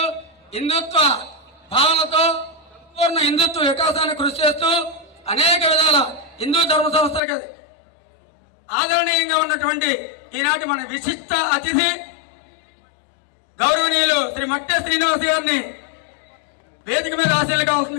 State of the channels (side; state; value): right; drops out; at 7.2 s